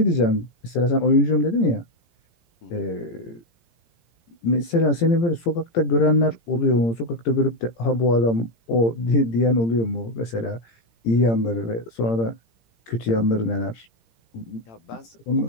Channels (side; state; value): right; late; 17 ms